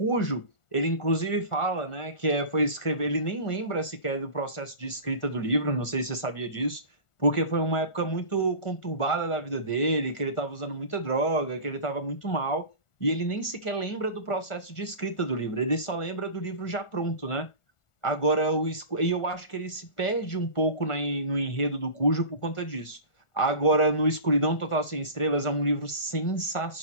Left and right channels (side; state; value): right; late; 1.4 ms